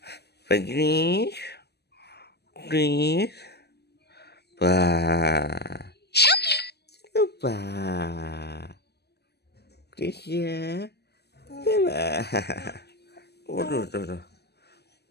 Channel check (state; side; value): late; right; 0.48 ms